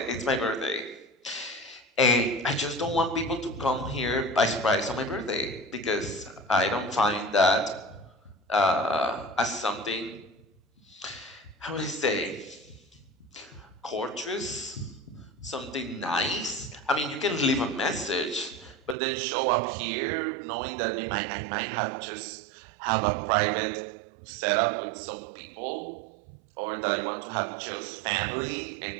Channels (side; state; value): left; drops out; at 18.9 s